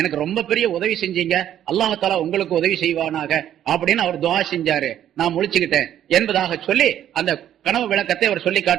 ரொம்ப பெரிய உதவி செஞ்சீங்க, அல்லாஹ் உங்களுக்கு உதவி செய்வானாக அப்படின்னு அவர் துஆ செஞ்சாரு, நான் முழிச்சுக்கிட்டேன் என்பதாக சொல்லி அந்த கனவு விளக்கத்தை அவர் சொல்லி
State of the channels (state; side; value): quieter; left; 10.9 dB